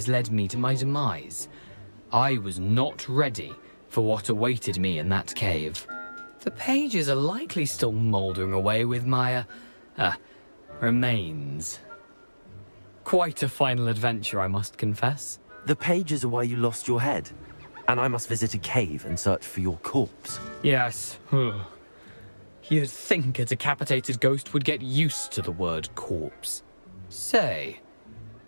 led me to my demise. I was not ready for what awaited me in that cave. The pages are likely still mouldering away with my, remains. Quite a final adventure, I must confess. The pages are why you lost your head, and I must visit a cave and search for your corpse. Yes. You'd think a decapitated ghost would get used to the word corpse. Say,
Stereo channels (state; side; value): inverted; both; correlation -1.00